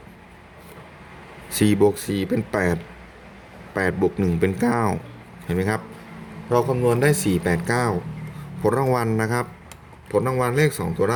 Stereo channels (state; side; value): identical; both; correlation 1.00